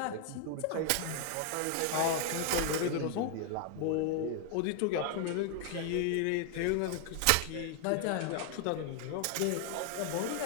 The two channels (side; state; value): both; different; correlation 0.00